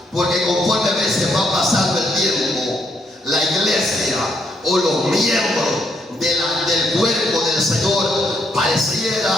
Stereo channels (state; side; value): normal; both; correlation 0.74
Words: porque conforme a veces va pasando el tiempo, la iglesia o los miembros de la del Señor